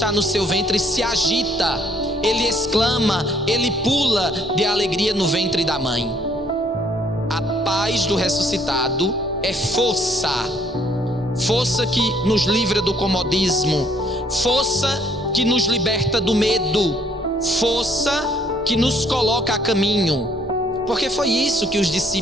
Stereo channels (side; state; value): both; normal; correlation 0.64